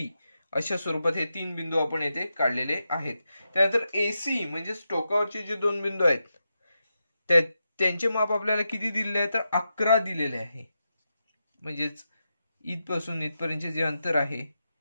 अशा स्वरूपात हे 3 बिंदू आपण येथे काढलेले आहेत. त्यानंतर AC म्हणजेच टोकावरचे जे 2 बिंदू आहेत त्यांचे माप आपल्याला किती दिलेले आहे तर 11 दिलेले आहे. म्हणजेच इथपासून इथपर्यंतचे जे अंतर आहे,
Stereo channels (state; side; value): inverted; both; correlation -0.87